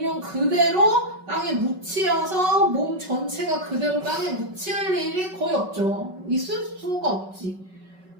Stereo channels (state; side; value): late; left; 5.3 ms